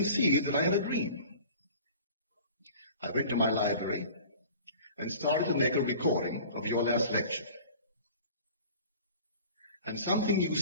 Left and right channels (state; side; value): inverted; both; correlation -0.44